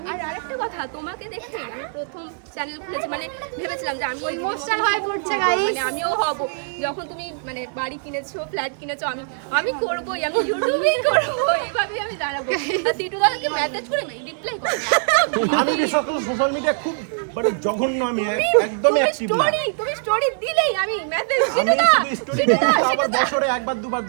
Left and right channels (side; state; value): left; silent; digital silence